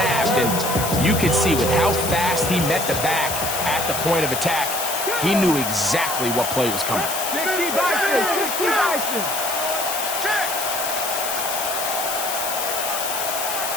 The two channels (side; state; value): left; noise; hiss, 4 dB below the sound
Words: And you can see with how fast he met the back at the point of attack, he knew exactly what play was coming. 60 Bison. 60 Bison. Check.